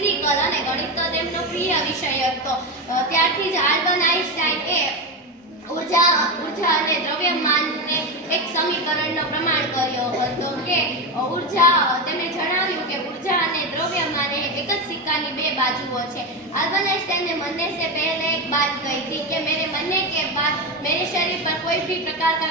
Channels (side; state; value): both; normal; correlation 0.15